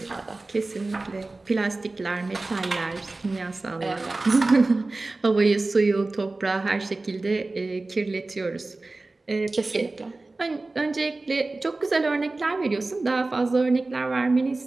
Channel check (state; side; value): quieter; left; 3.2 dB